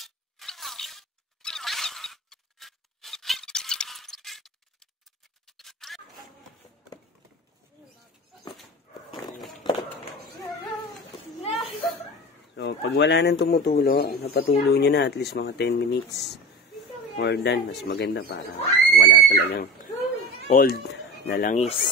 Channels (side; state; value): both; normal; correlation 0.32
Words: So, pag wala nang tumutulo, napatulo nyo na at least mga 10 minutes. More than, mas maganda para wala talagang old na